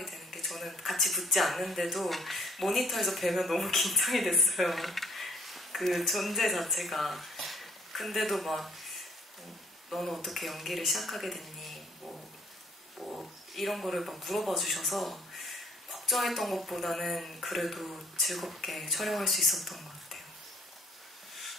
되는 게 저는 같이 붙지 않는데도 모니터에서 뵈면 너무 긴장이 됐어요. 그 존재 자체가. 근데도 막 너는 어떻게 연기를 시작하게 됐니? 뭐 이런 거를 막 물어봐 주셔서 걱정했던 것보다는 그래도 즐겁게 촬영할 수 있었던 것 같아요.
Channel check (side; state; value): both; normal; correlation 0.60